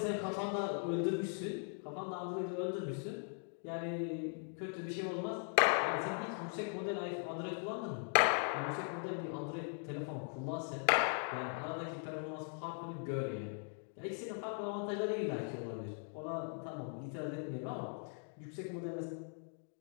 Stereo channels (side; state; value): right; silent; 51 dB below the other